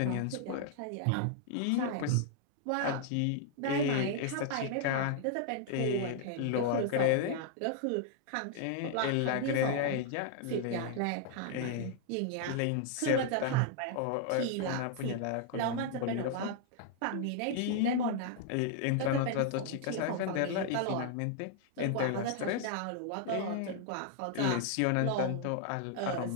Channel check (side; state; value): both; different; correlation 0.00